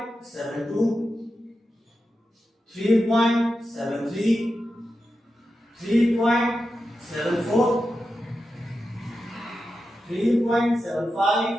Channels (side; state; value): both; normal; correlation 0.90